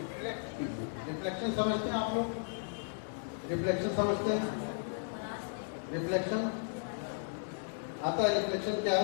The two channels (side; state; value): right; silent; digital silence